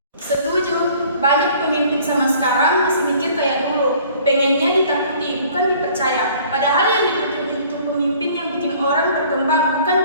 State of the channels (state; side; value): inverted; both; correlation -0.53